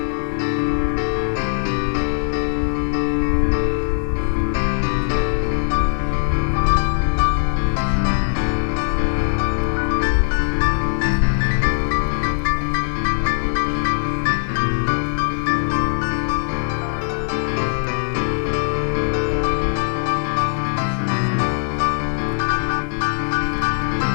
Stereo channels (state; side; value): silent; right; digital silence